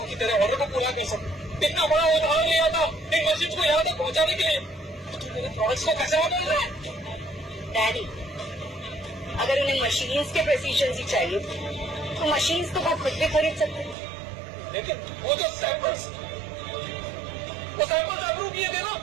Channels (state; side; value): drops out; left; at 14.0 s